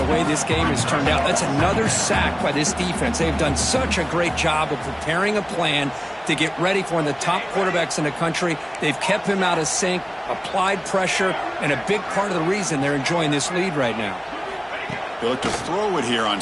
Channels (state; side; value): identical; both; correlation 1.00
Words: way this game has turned out. That's another sack by this defense. They've done such a great job of preparing a plan to get ready for one of the top quarterbacks in the country. They've kept him out of sync, applied pressure, and a big part of the reason they're enjoying this lead right now. They look to throw it here on